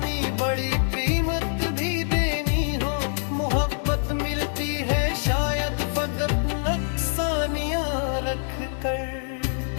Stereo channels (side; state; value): right; silent; 62 dB below the other